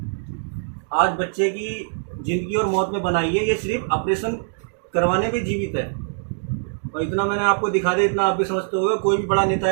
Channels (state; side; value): silent; left; digital silence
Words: आज बच्चे की जिंदगी और मौत में बनाई है। ये सिर्फ ऑपरेशन करवाने पे जीवित है। और इतना मैंने आपको दिखा दिया, इतना आप भी समझते होगे। कोई भी बड़ा नेता